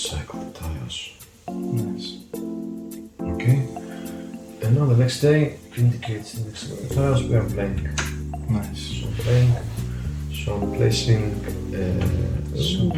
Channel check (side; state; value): both; identical; correlation 1.00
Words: the tiles. Nice. Okay. And now the next day indicates the next tiles we are blank. Nice. So blank. So I'm placing So